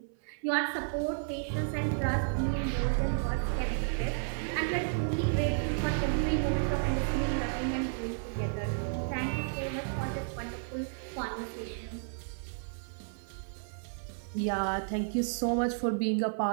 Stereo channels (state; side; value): silent; left; 56 dB below the other